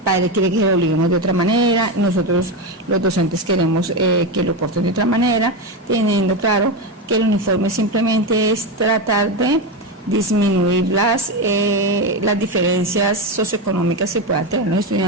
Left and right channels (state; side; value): normal; both; correlation 0.14